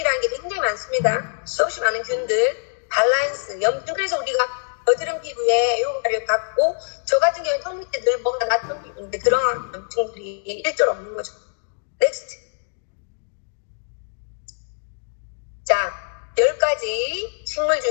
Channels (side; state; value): right; silent; digital silence